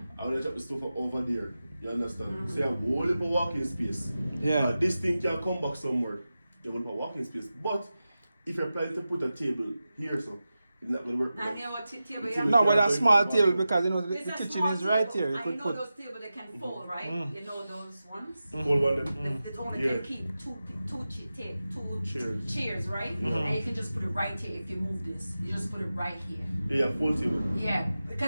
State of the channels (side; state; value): both; inverted; correlation -0.93